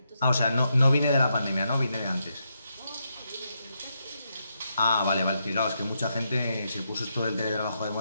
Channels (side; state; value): both; inverted; correlation -0.82